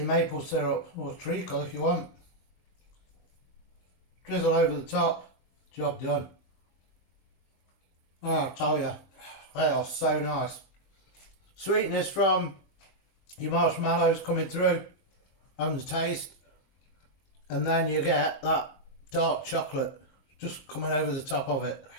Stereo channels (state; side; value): late; right; 22 ms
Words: maple syrup or treacle if you want. Drizzle over the top, job done. Oh, I'll tell you, they are so nice. Sweetness from your marshmallows coming through and the taste, and then you get that dark chocolate just coming over the top of it.